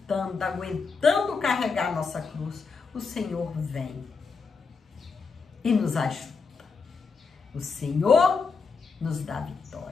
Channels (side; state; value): right; quieter; 4.9 dB